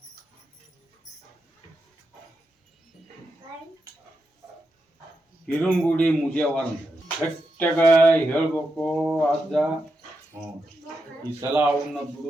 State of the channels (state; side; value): normal; both; correlation 0.86